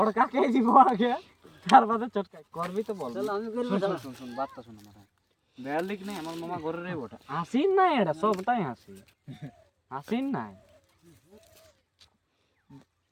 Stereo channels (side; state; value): both; identical; correlation 1.00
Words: বড় কাকে দিব আগে তার বাদে চটকাই করবি তো বল শালা আমি করব শুন শালা শুন শুন বাতটা শুন আমার বেয়ার লিখ নাই আমার মামা ঘরে রে ওটা হাসিন নাই এটা সবটাই হাসি হাসিন নাই